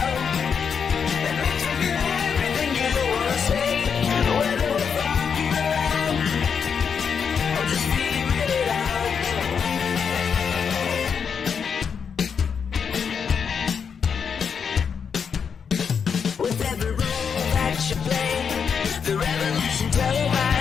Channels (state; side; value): quieter; right; 6.6 dB